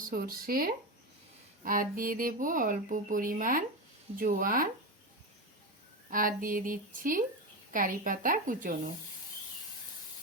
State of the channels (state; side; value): normal; both; correlation 0.17